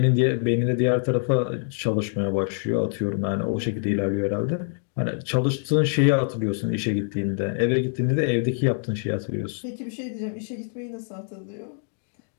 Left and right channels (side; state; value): right; silent; 62 dB below the other